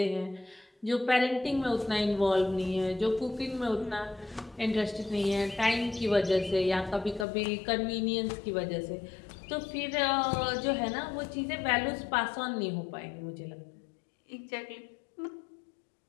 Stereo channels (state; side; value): drops out; right; at 7.2 s